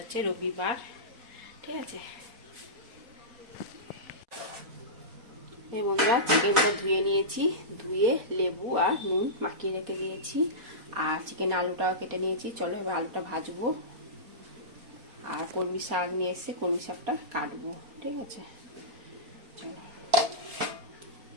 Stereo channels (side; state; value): left; late; 4.2 ms